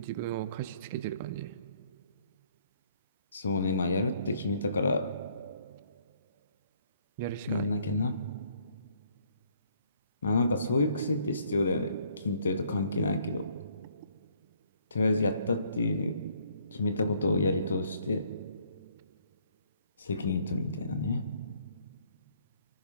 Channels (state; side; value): inverted; both; correlation -0.64